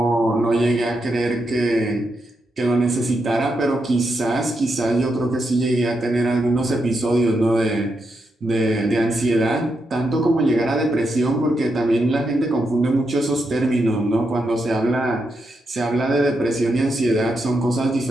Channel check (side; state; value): both; normal; correlation 0.83